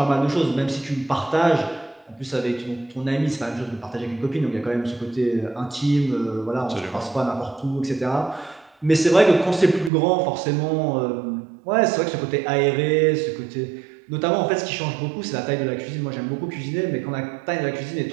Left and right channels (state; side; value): drops out; left; at 9.9 s